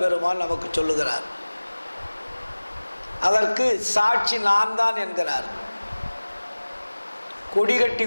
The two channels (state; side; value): inverted; both; correlation -1.00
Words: பெருமான் நமக்கு சொல்லுகிறார். அதற்கு சாட்சி நான் தான் என்கிறார். கொடி கட்டி